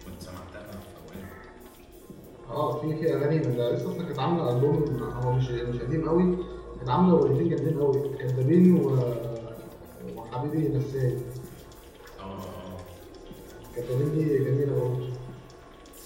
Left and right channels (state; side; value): identical; both; correlation 1.00